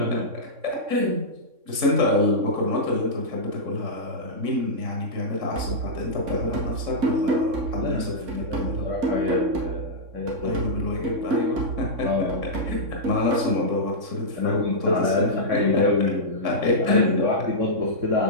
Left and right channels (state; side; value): late; left; 3.6 ms